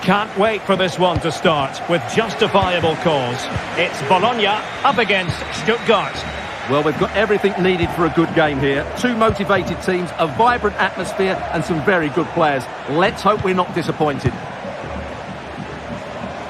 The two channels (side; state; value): both; identical; correlation 1.00